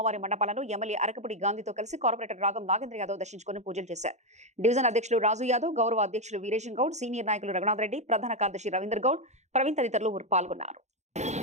మండపాలను ఎమ్మెల్యే అరకపుడి గాంధీతో కలిసి కార్పొరేటర్ రాగం నాగేంద్ర యాదవ్ దర్శించుకుని పూజలు చేశారు. డివిజన్ అధ్యక్షులు రాజు యాదవ్, గౌరవ అధ్యక్షులు వీరేశం గౌడ్, సీనియర్ నాయకులు రఘునాథ్ రెడ్డి, ప్రధాన కార్యదర్శి రవీందర్ గౌడ్, ప్రవీణ్ తదితరులు పాల్గొన్నారు.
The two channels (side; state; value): left; late; 0.33 ms